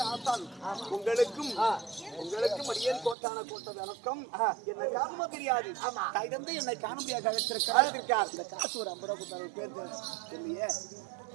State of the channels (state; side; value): drops out; left; at 3.2 s